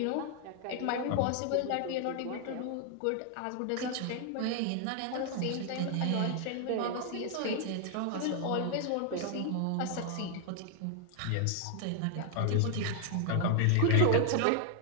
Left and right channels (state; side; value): different; both; correlation 0.00